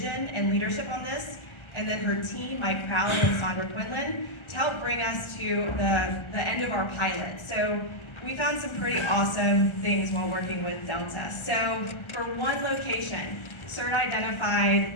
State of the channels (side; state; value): right; late; 1.4 ms